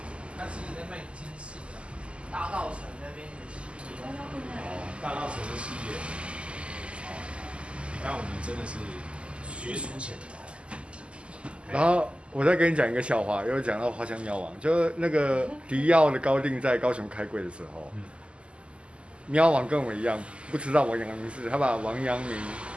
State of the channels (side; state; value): left; late; 0.054 ms